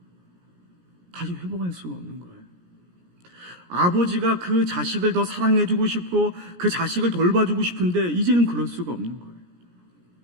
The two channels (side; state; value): left; late; 17 ms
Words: 다시 회복할 수가 없는 거예요. 아버지가 그 자식을 더 사랑해주고 싶고 그 자식을 돌봐주고 싶은데 이제는 그럴 수가 없는 거예요.